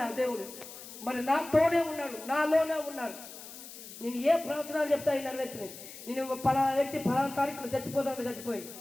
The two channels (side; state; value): left; noise; hiss, 14 dB below the sound